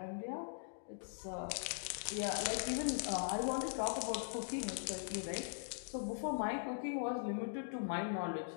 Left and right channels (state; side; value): silent; right; digital silence